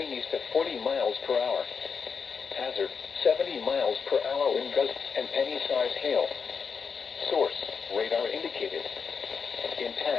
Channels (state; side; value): quieter; right; 5.8 dB